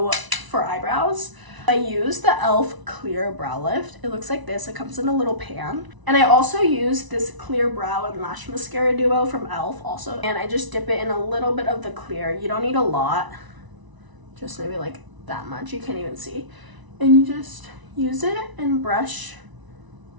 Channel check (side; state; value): left; late; 1.0 ms